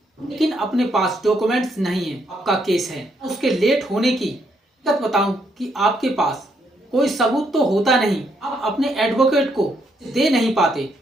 लेकिन अपने पास डॉक्यूमेंट्स नहीं है, आपका केस है। उसके लेट होने की हकीकत बताऊं कि आपके पास कोई सबूत तो होता नहीं, आप अपने एडवोकेट को दे नहीं पाते।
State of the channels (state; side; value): normal; both; correlation 0.74